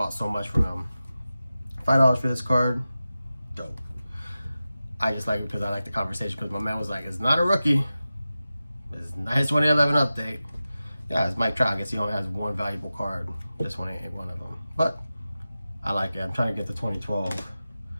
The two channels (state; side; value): inverted; both; correlation -0.94